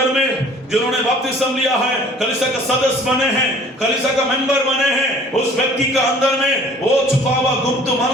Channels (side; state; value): both; normal; correlation 0.52